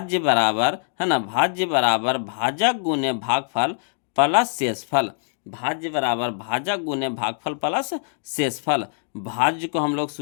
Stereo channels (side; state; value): right; silent; digital silence